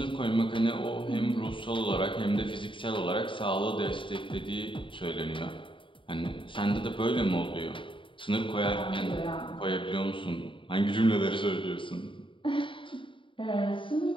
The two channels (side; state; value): right; late; 0.25 ms